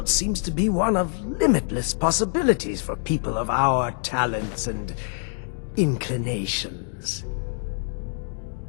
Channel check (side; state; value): right; silent; digital silence